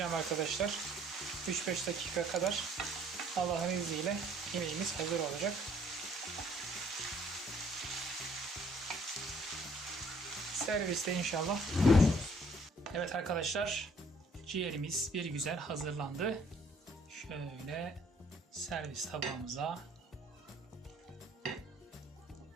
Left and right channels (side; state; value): both; normal; correlation 0.61